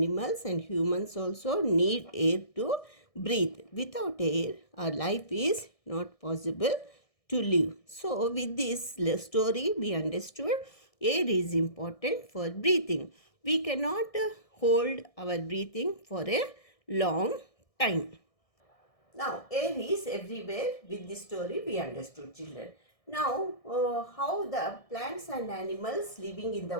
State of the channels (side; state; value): right; late; 1.6 ms